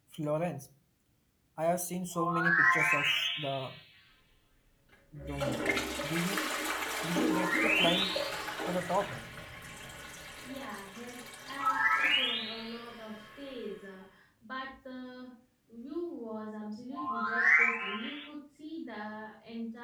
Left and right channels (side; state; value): both; identical; correlation 1.00